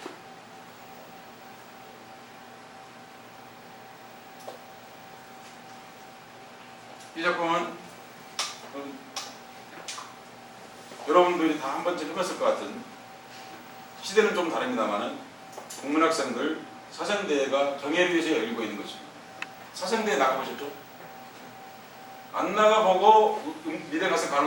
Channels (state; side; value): identical; both; correlation 1.00